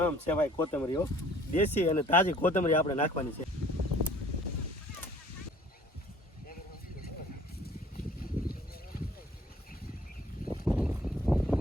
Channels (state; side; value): normal; both; correlation 0.54